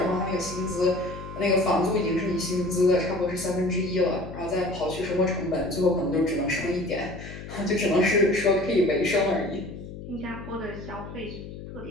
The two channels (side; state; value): left; noise; hum, 12 dB below the sound